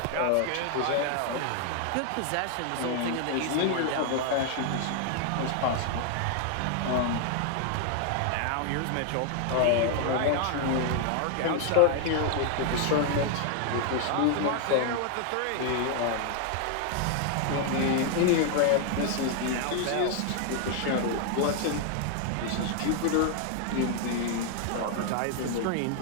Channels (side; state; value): both; different; correlation 0.00